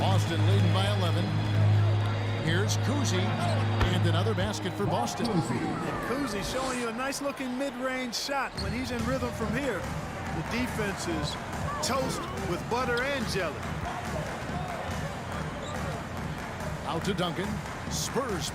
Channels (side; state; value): both; identical; correlation 1.00